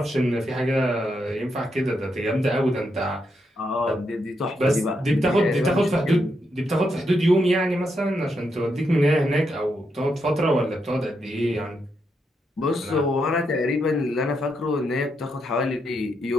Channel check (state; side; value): normal; both; correlation 0.81